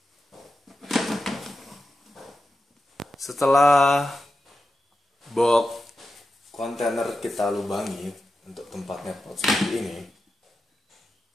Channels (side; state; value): both; normal; correlation 0.91